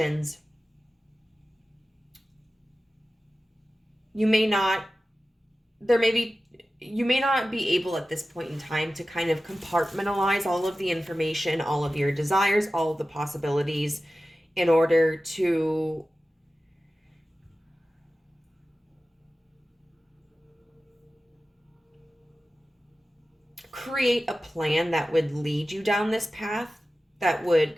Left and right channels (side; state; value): both; normal; correlation 0.95